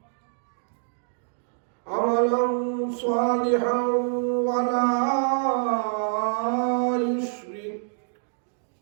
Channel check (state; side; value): silent; left; digital silence